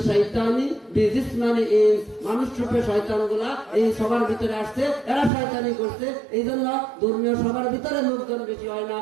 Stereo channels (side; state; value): left; drops out; at 5.3 s